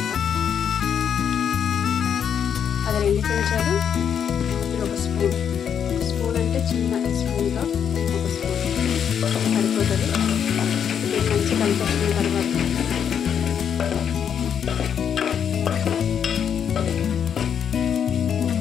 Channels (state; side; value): quieter; right; 8.1 dB